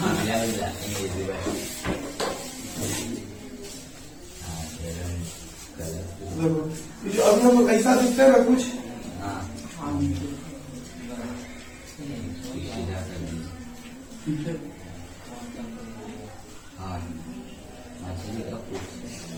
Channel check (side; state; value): both; identical; correlation 1.00